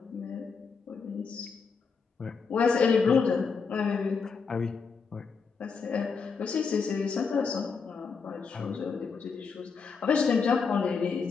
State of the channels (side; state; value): right; quieter; 5.4 dB